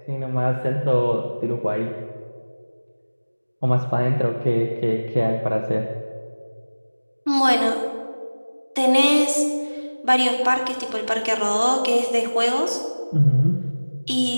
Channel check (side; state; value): both; inverted; correlation -1.00